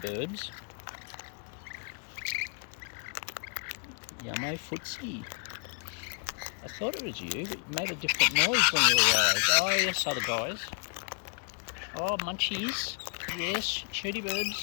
Yummo, Footsie. I thought it was you, but you made a different noise when you arrived. Oh, yes, other guys. Oh, munchies. Yes, shirty Birbs.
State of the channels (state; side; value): quieter; right; 39.2 dB